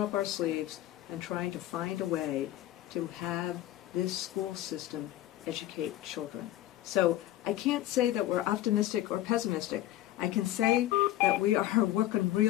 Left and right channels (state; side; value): quieter; right; 14.2 dB